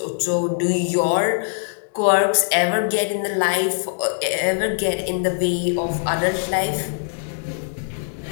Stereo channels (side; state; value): right; silent; 64 dB below the other